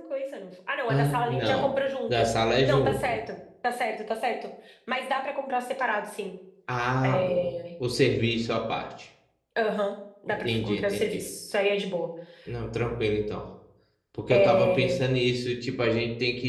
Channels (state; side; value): identical; both; correlation 1.00